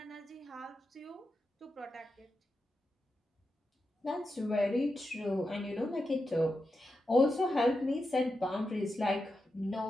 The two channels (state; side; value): normal; both; correlation 0.89